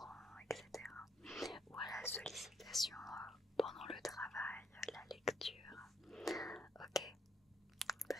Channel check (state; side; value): normal; both; correlation 0.71